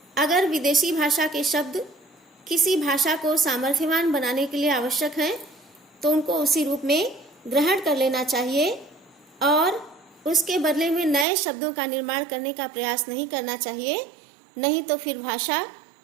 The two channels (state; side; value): drops out; left; at 11.2 s